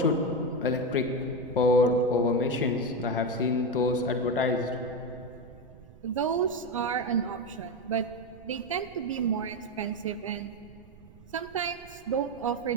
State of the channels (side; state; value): right; noise; rumble, 21 dB below the sound